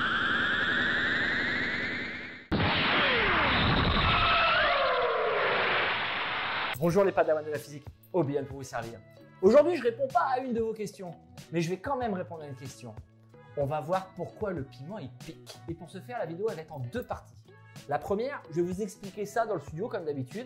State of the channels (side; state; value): both; identical; correlation 1.00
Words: Bonjour les padawans de la physique, Obi-Wan pour vous servir. Aujourd'hui, je réponds pas à une de vos questions, mais je vais quand même répondre à une question. On va voir pourquoi le piment il pique. Et pour ce faire, la vidéo elle va être en deux parties. La première, je vais vous expliquer ça dans le studio comme